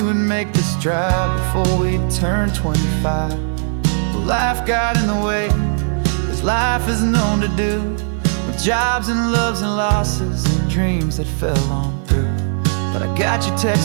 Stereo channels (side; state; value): left; silent; 67 dB below the other